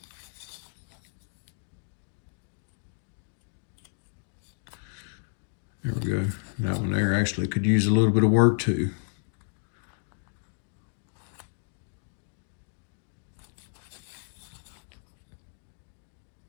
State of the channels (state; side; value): silent; right; digital silence